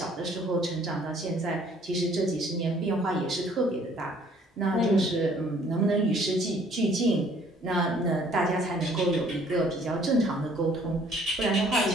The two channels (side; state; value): both; normal; correlation 0.59